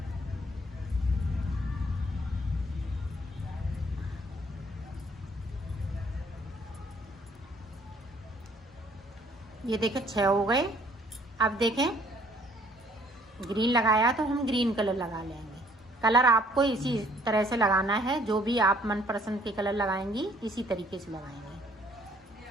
ये देखें 6 हो गए। अब देखें ग्रीन लगाया तो हम ग्रीन कलर लगा लेंगे। कलर आपको इसी तरह से लगाना है, जो भी आप मनपसंद के कलर लगाएंगी इसी तरीके से लगाएंगे।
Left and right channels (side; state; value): both; normal; correlation 0.61